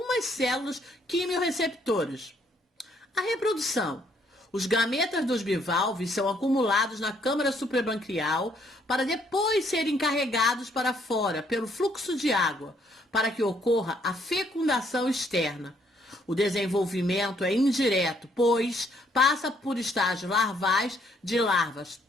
células quimiorreceptoras. A reprodução. Os gametas dos bivalves são acumulados na câmara suprabranquial para depois serem carregados para fora pelo fluxo de água, para que ocorra a fecundação externa. O desenvolvimento é indireto, pois passa por estágios larvais de larvas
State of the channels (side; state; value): both; normal; correlation 0.68